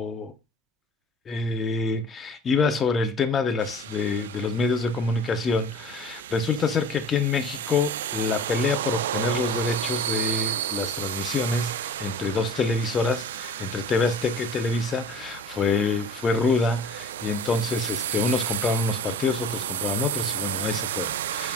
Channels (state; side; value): normal; both; correlation 0.42